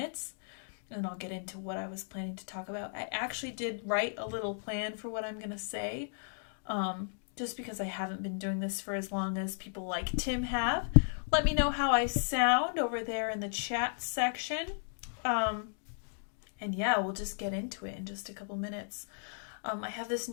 and then I'll get into what I was planning to talk about. I actually did write a little plan for what I'm going to say, just because I haven't been doing this for as long as people like Tim have. Let me know how I sound over there in the chat section. And yeah, we'll just get into it in just a couple minutes. I have this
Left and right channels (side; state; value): right; silent; digital silence